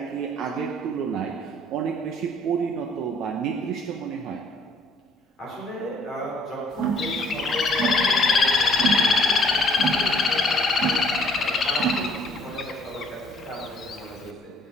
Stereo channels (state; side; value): normal; both; correlation 0.60